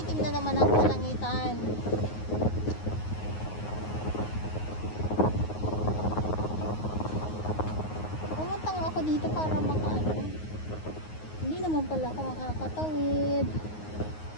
na naman ang kalangitan. Pumunta nga ako dito para makaano. Hindi naman pala ako makakatawid.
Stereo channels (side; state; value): right; late; 9.5 ms